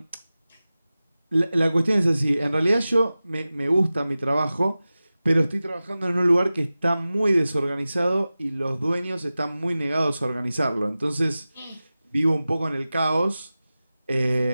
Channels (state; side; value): inverted; both; correlation -0.96